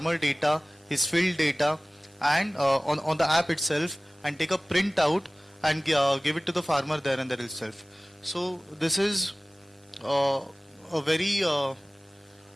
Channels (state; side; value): normal; both; correlation 0.98